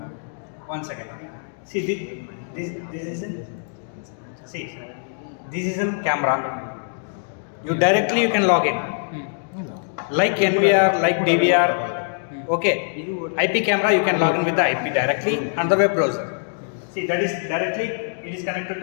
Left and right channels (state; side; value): silent; right; digital silence